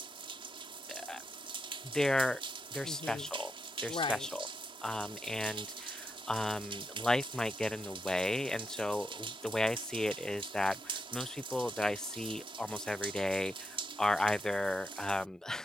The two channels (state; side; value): normal; both; correlation 0.84